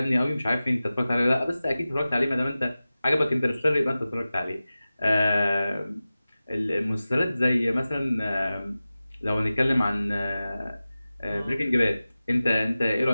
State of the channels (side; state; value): both; inverted; correlation -0.96